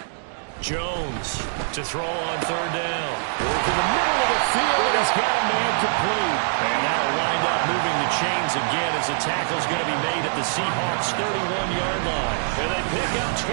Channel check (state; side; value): silent; left; digital silence